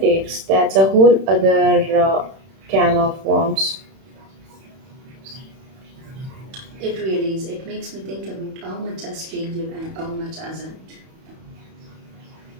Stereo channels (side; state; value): left; late; 31 ms